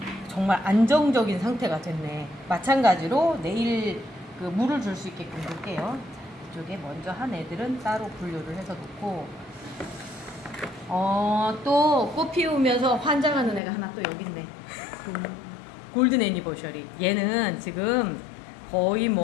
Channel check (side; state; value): right; drops out; at 13.6 s